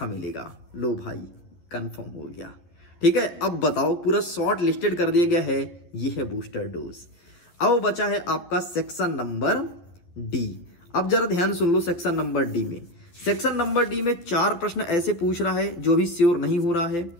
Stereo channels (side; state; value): right; late; 12 ms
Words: मिलेगा। लो भाई कंफर्म हो गया। ठीक है, अब बताओ, पूरा शॉर्ट लिस्टेड कर दिया गया है, ये है बूस्टर डोज। अब बचा है आपका सेक्शन नंबर डी। अब जरा ध्यान सुन लो, सेक्शन नंबर डी में, सेक्शन नंबर डी में 4 प्रश्न ऐसे पूछ रहा है जो भी श्योर नहीं हो रहा है।